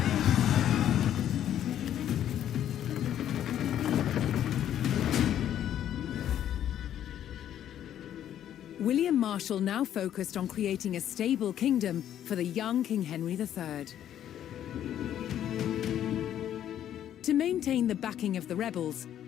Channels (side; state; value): right; quieter; 10.8 dB